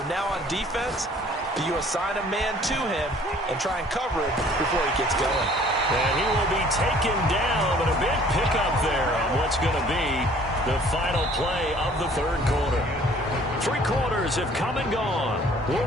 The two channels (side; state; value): both; normal; correlation 0.54